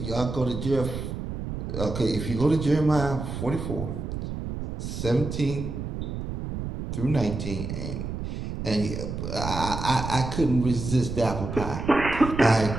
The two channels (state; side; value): noise; right; rumble, 5 dB below the sound